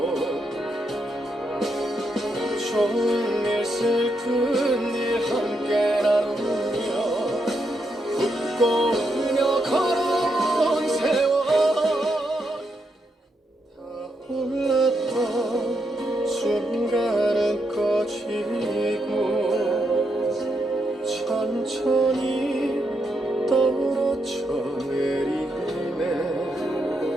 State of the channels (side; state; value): both; normal; correlation 0.81